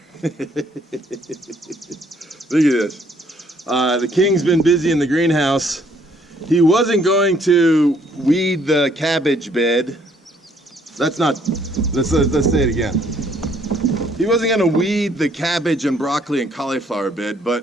Look at this. The king's been busy in the greenhouse. He wasn't going to weed the cabbage bed. Let's say it again. He wasn't going to weed the cabbage and broccoli and cauliflower bed, but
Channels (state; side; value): normal; both; correlation 0.65